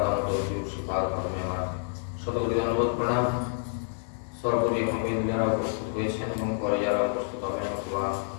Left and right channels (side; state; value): right; silent; 59 dB below the other